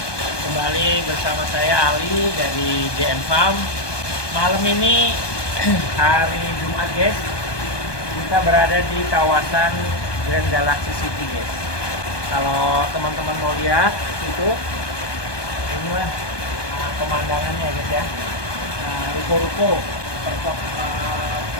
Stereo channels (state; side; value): late; right; 1.2 ms